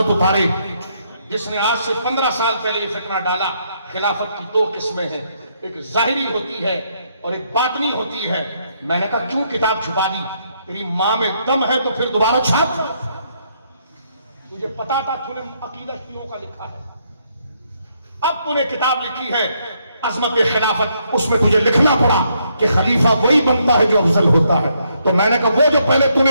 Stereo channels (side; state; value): both; inverted; correlation -0.74